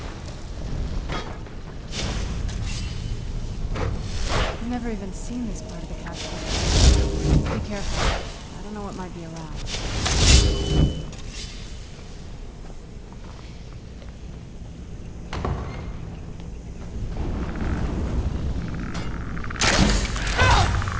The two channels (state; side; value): identical; both; correlation 1.00